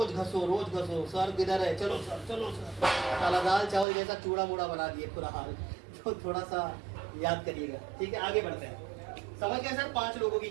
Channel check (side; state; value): left; drops out; at 3.9 s